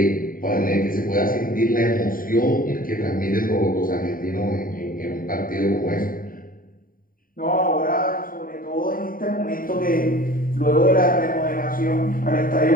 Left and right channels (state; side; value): late; right; 0.41 ms